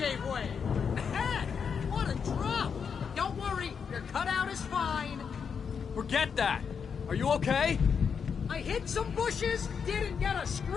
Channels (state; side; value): quieter; right; 6.5 dB